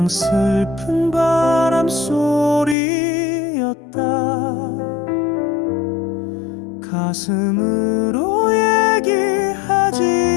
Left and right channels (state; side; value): drops out; right; at 2.8 s